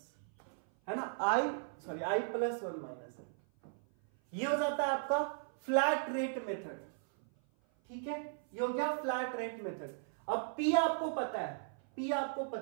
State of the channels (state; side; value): silent; left; 53 dB below the other